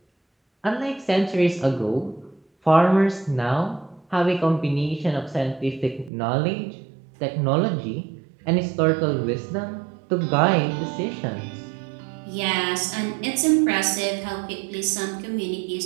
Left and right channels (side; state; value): left; drops out; at 6.1 s